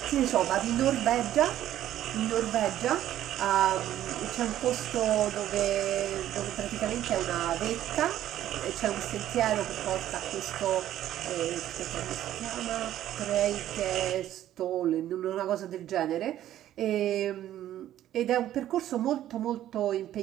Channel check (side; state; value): left; quieter; 12.4 dB